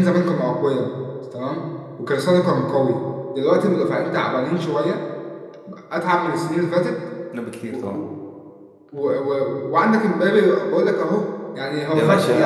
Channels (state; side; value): identical; both; correlation 1.00